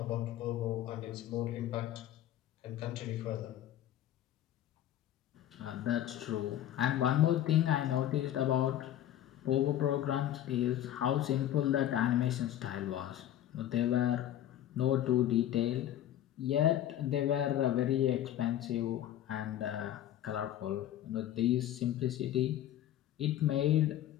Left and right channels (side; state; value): right; quieter; 12.1 dB